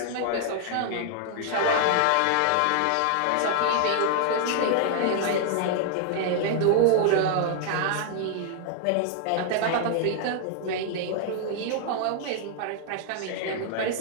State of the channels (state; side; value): different; both; correlation 0.00